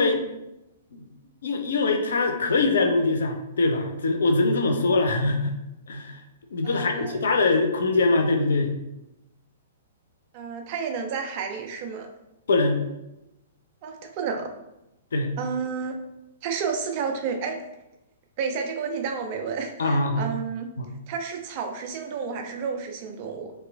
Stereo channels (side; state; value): both; inverted; correlation -0.62